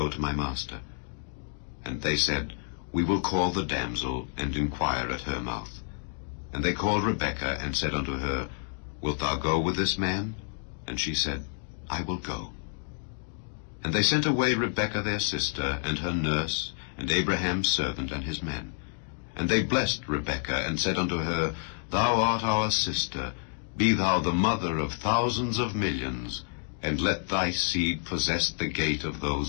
to my master. And they said, We will call the damsel, and inquire at her mouth. And they called Rebekah, and said unto her, Wilt thou go with this man? And she said, I will go. And they sent away Rebekah their sister, and her nurse, and Abraham's servant, and his men. And they blessed Rebekah, and said unto her, Thou art our sister, be thou the mother of thousands of millions, and let thy seed possess the gate of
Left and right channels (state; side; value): silent; right; digital silence